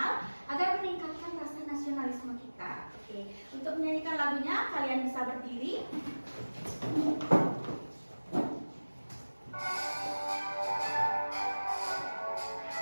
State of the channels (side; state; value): both; inverted; correlation -1.00